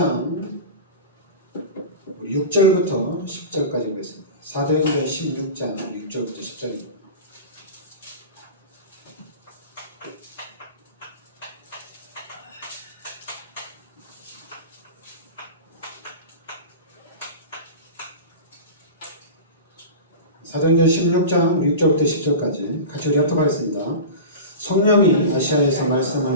6절부터 10절까지 보겠습니다. 사도행전 16장 6절부터 10절입니다. 사도행전 16장 6절부터 10절까지 같이 우리 합독하겠습니다. 성령이 아시아에서 말씀을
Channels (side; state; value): both; inverted; correlation -0.30